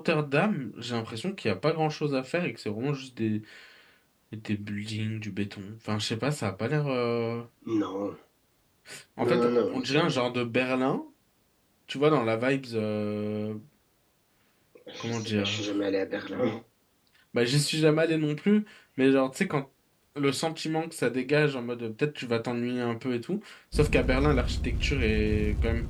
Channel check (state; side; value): identical; both; correlation 1.00